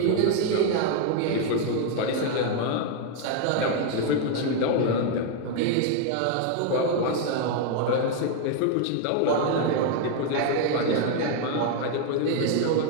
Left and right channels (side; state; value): both; different; correlation 0.01